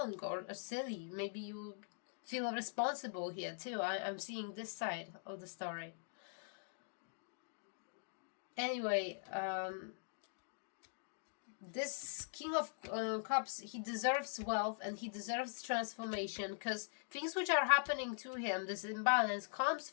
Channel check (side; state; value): right; silent; digital silence